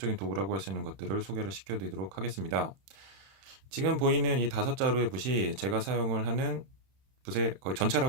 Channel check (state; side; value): late; left; 31 ms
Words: 도구라고 할 수 있는 것들을 소개를 시켜드리도록 하겠습니다. 지금 보이는 이 5자루의 붓이 제가 사용을 하는 붓의 거의